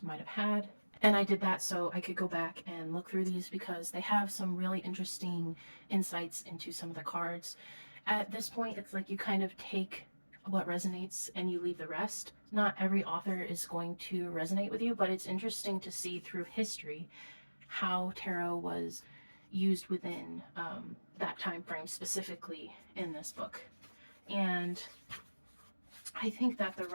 might have had. And I did that so I could go back and look through these, because they have some really interesting insights into some of the cards. At this point, it's like you kind of take what resonates and you leave the rest. Not every author is going to resonate with you, but it's interesting to see through history how tarot was used within that time frame, specifically in this book. And I think that the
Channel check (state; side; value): inverted; both; correlation -1.00